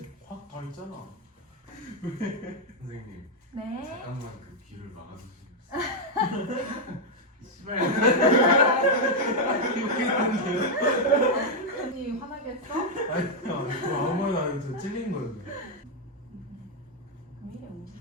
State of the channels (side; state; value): both; normal; correlation 0.00